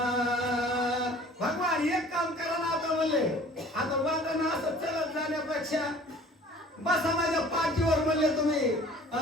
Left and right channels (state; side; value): normal; both; correlation 0.49